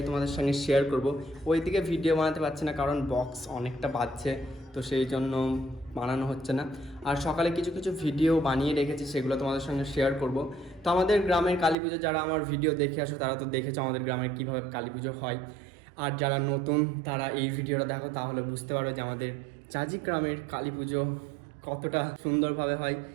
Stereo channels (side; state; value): left; drops out; at 11.8 s